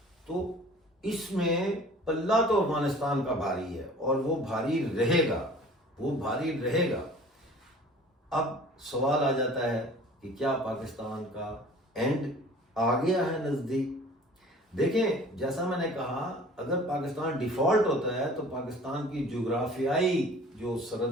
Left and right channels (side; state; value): both; normal; correlation 0.47